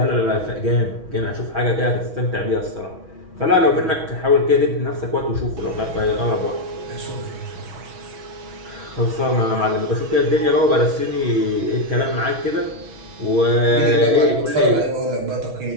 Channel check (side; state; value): left; late; 6.2 ms